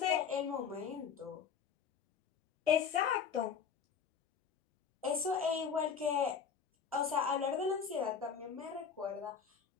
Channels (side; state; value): right; quieter; 6.7 dB